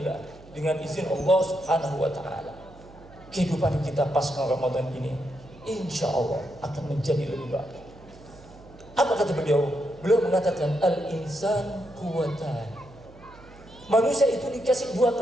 dengan izin Allah Subhanahu wa taala, kehidupan kita pasca Ramadan ini insya Allah akan menjadi lebih baik. Apa kata beliau? Beliau mengatakan al-insan quwwatan. Manusia itu dikasih dua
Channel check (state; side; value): noise; right; hum, 22 dB below the sound